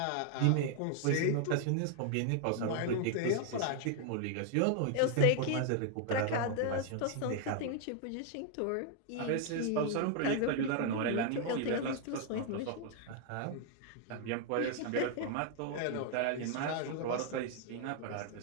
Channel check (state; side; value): different; both; correlation 0.00